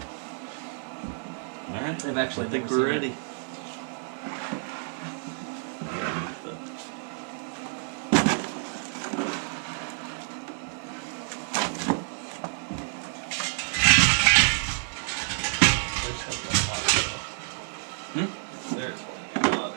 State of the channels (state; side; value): silent; left; 59 dB below the other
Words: Alright, I've actually I think never we're seen it. ready. There's one. A lot